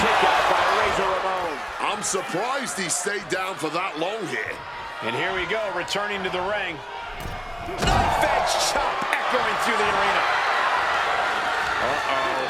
kick out by Razor Ramon. I'm surprised he stayed down for that long here. And here we go, returning to the ring. Knife edge chop echoing through the arena.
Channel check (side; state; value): both; identical; correlation 1.00